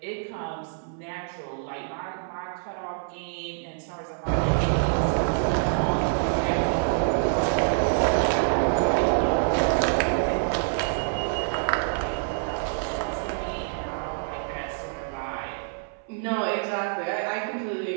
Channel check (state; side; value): silent; left; 61 dB below the other